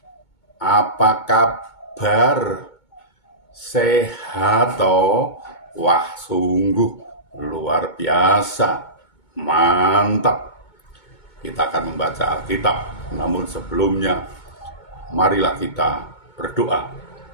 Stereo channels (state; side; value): late; right; 2.2 ms